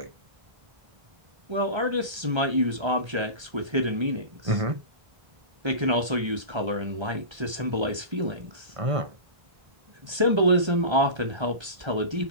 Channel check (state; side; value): late; left; 1.3 ms